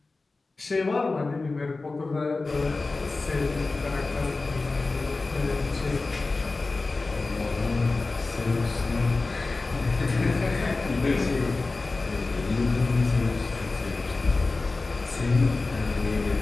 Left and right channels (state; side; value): quieter; right; 3.5 dB